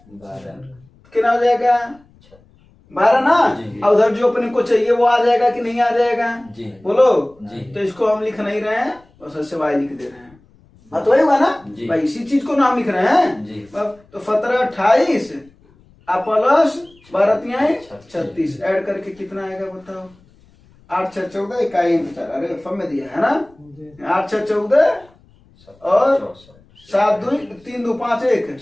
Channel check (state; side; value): noise; left; rumble, 29 dB below the sound